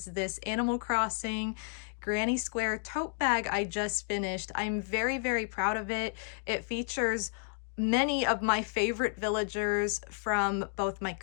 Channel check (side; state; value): right; silent; digital silence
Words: this Animal Crossing Granny Square tote bag I just finished. I'm very, very proud of it. It features many of my favorite villagers from both my